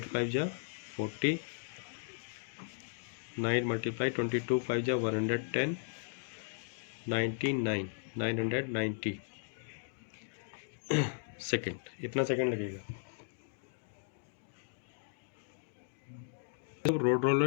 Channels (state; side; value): silent; right; digital silence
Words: 5 जा 40, 9 मल्टीप्लाई 22 5 जा 110, 99 990 सेकेंड, इतना सेकेंड लगेगा। Road